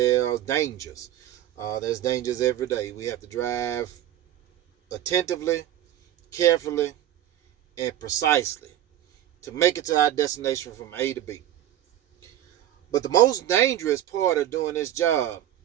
are dangers. There's dangers every day. We have to drive attentively, carefully, and precisely to make it to our destination from A to B. But the most dangerous part of doing this job,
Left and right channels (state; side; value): quieter; left; 12.1 dB